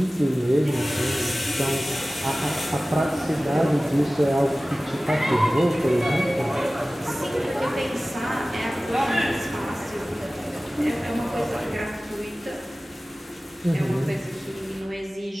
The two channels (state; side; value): normal; both; correlation 0.97